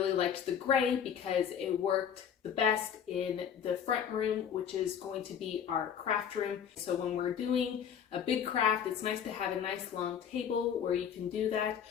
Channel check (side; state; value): right; quieter; 8.3 dB